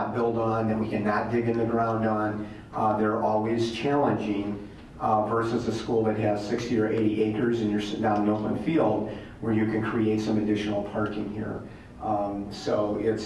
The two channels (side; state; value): both; identical; correlation 1.00